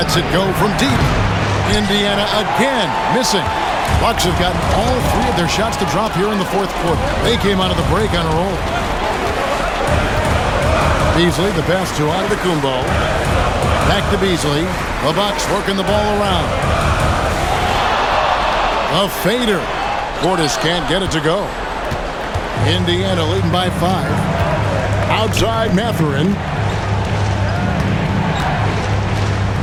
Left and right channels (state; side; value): identical; both; correlation 1.00